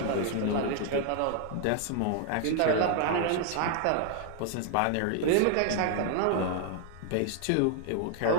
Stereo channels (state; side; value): different; both; correlation 0.00